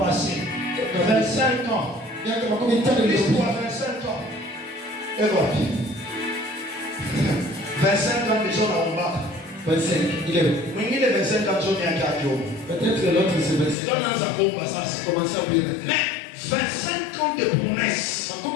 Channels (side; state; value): right; drops out; at 13.8 s